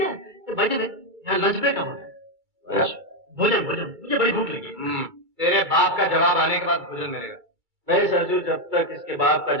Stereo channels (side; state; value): left; late; 2.3 ms